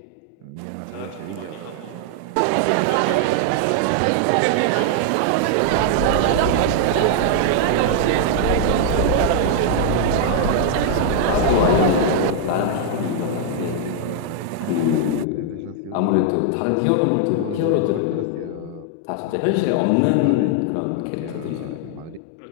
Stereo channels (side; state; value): both; different; correlation 0.00